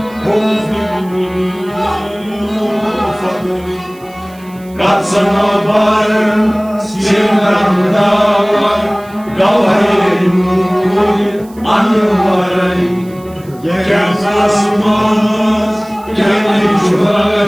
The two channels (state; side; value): noise; right; hiss, 26 dB below the sound